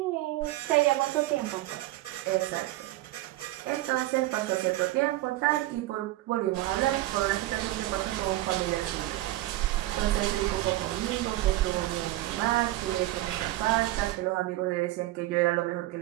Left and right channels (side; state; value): left; quieter; 16.8 dB